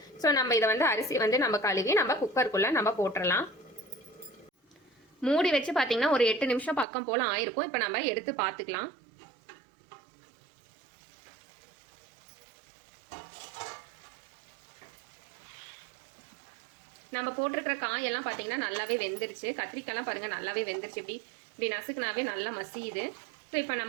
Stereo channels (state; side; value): drops out; left; at 6.9 s